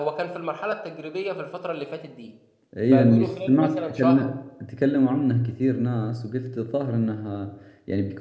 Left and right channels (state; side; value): identical; both; correlation 1.00